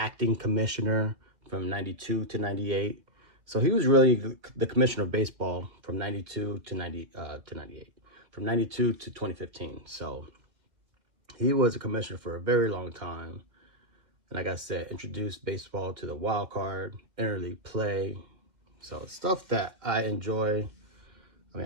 commissioner from '92 to '98. So he was really the commissioner of baseball from '92 to '98, from '92 to 2015. So he was a commissioner for a very long time. And like I said, introduced baseball to the wild card, interleague play. So stuff that I enjoy. I mean,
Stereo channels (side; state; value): left; late; 2.3 ms